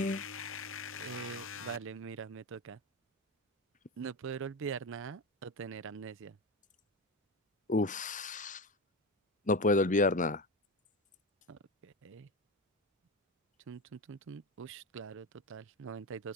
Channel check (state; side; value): normal; both; correlation 0.19